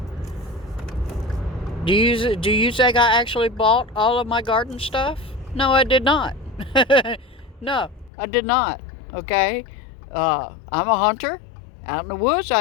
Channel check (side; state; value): right; drops out; at 8.1 s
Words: Do you think I actually bought all of my garden stuff? No, I did not. No, I did not. Okay? I'm a hunter. Out in the woods,